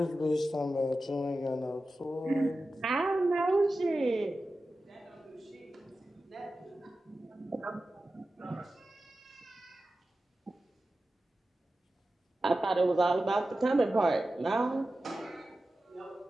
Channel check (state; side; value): normal; both; correlation 0.94